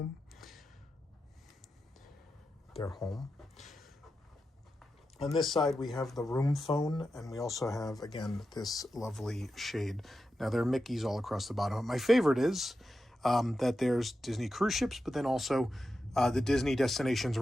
Their home. On this side, we have the room phone, and we also have, again, this lovely shade. Now, there are Mickeys all across the bottom. My favorite is that there's Disney cruise ships, but then also the Disney destinations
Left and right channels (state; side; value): normal; both; correlation 0.90